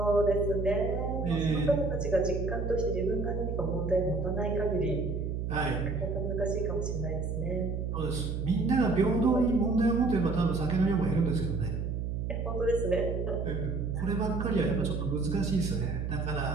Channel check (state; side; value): noise; right; hum, 2 dB below the sound